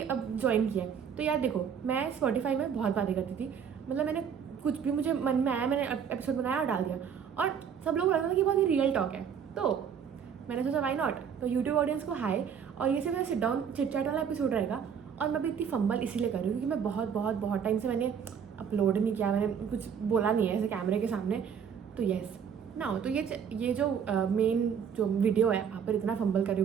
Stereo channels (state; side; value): quieter; left; 7.4 dB